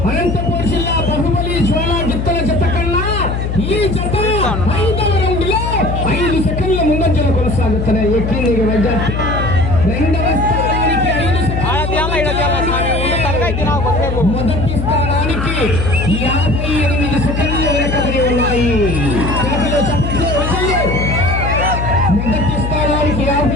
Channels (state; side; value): noise; left; hum, 2 dB below the sound